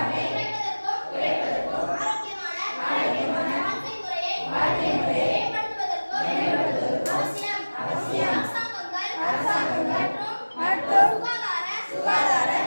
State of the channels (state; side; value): inverted; both; correlation -1.00